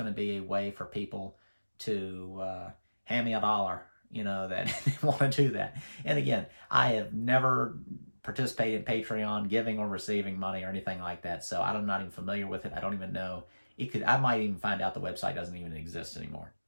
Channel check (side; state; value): both; inverted; correlation -1.00